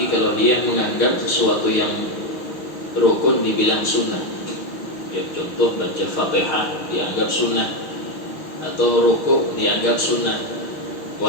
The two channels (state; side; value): late; right; 6.2 ms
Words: kalau dia menganggap sesuatu yang rukun dibilang sunnah. Ya, contoh baca Fatihah dianggap sunnah, atau rukuk dianggap sunnah,